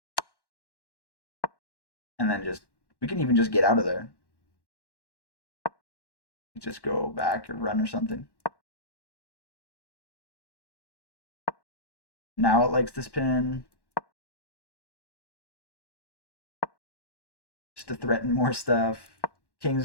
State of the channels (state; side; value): late; right; 1.1 ms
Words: And then just, we can even just get out of there. just go back or run or something. Now it likes this pin. Just to threaten more stuff.